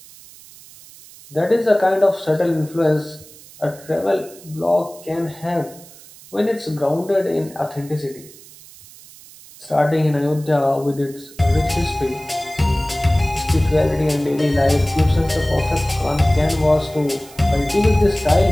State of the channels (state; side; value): noise; right; hiss, 21 dB below the sound